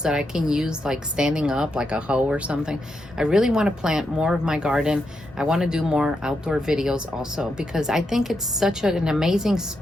that I can use, like standing up, like a hoe or something. I really want to plant more of my garden. I want to do more outdoor videos also because I think it's such an amazing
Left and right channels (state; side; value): normal; both; correlation 0.83